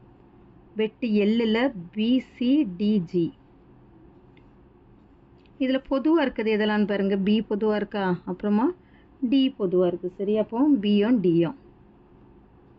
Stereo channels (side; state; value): both; identical; correlation 1.00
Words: வெட்டு எல்லில் பிசிடிஜி. இதில் பொதுவாக இருக்குது எதெல்லாம் பாருங்கள். பி பொதுவாக இருக்கா, அப்புறமா டி பொதுவாக இருக்குது. சரி, அப்போ பியும் டியும்.